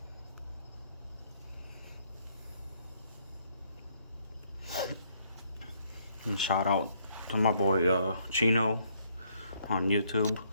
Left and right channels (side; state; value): both; inverted; correlation -0.69